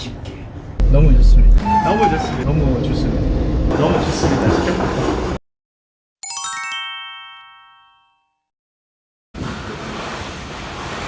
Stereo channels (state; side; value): identical; both; correlation 1.00